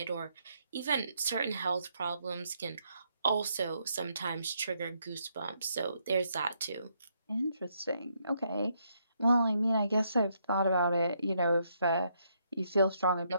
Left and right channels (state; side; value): inverted; both; correlation -0.75